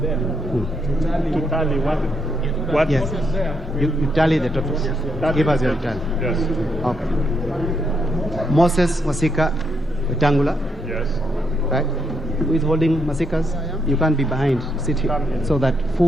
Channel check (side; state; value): both; normal; correlation 0.77